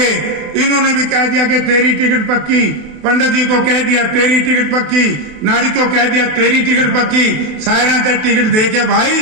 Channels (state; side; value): late; left; 28 ms